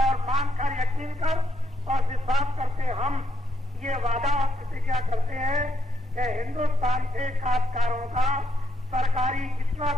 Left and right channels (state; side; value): normal; both; correlation 0.77